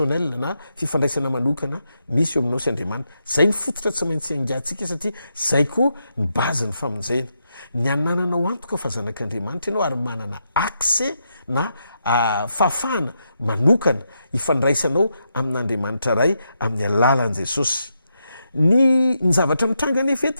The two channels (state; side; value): inverted; both; correlation -0.83